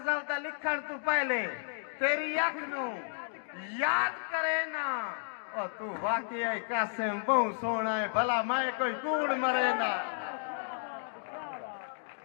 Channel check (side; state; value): right; silent; digital silence